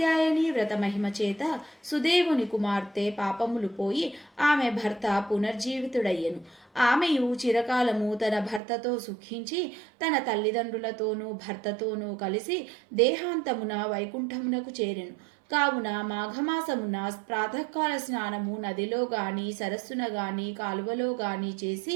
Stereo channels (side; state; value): left; drops out; at 8.6 s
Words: వ్రత మహిమ చేత సుదేవుని కుమార్తె పాపములు పోయి ఆమె భర్త పునర్జీవితుడయ్యెను. ఆమెయు చిరకాలము తన భర్తతో సుఖించి తన తల్లిదండ్రులతోనూ భర్తతోనూ కలిసి దేహాంతమున వైకుంఠమునకు చేరెను. కావున మాఘమాసమున ప్రాతకాల స్నానము నదిలో గాని సరస్సున గాని కాలువలో గాని చేసి